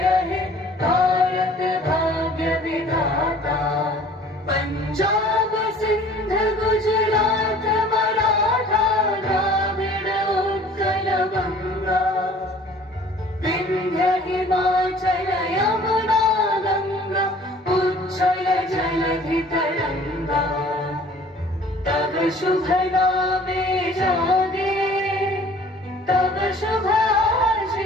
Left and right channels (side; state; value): both; normal; correlation 0.50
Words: हे भारत भाग्य विधाता, पंजाब सिंध गुजरात मराठा द्राविड़ उत्कल बंगा, विंध्य हिमाचल यमुना गंगा, उच्छल जलधि तरंगा, तब शुभ नामे जागे, तब शुभ